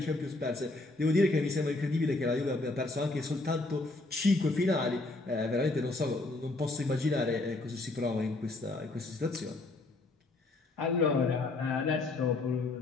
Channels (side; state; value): right; quieter; 3.1 dB